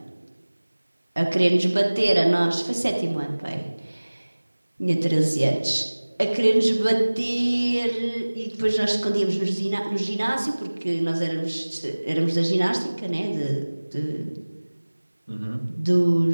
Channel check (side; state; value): both; inverted; correlation -1.00